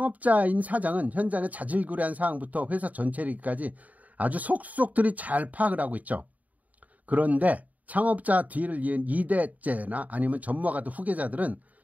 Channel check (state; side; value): late; left; 0.073 ms